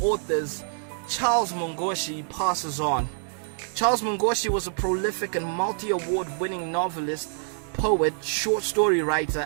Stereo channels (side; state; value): left; silent; digital silence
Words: authors, Charles Mungoshi, passes on. Charles Mungoshi was a prolific and multi-award-winning novelist, poet, short story writer,